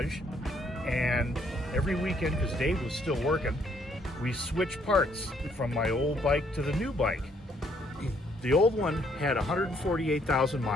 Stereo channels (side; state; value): both; normal; correlation 0.68